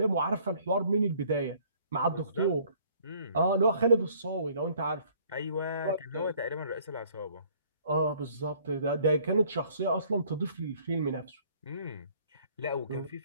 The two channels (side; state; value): both; inverted; correlation -0.58